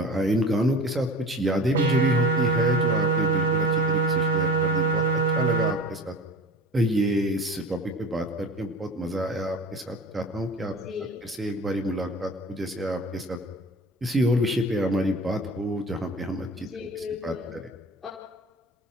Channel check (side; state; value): both; normal; correlation 0.38